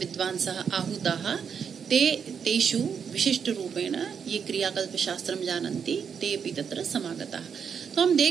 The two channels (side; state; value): left; quieter; 6.9 dB